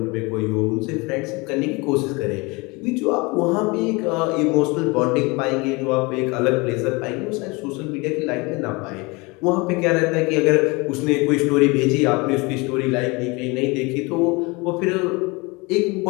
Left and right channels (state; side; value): quieter; right; 26.1 dB